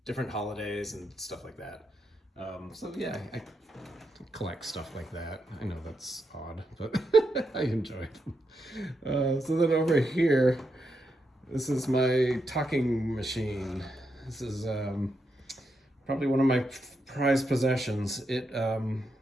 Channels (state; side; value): normal; both; correlation 0.83